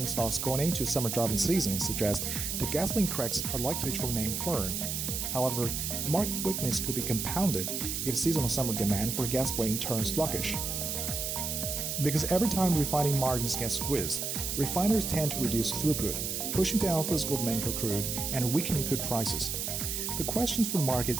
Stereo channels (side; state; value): right; noise; hiss, 2 dB below the sound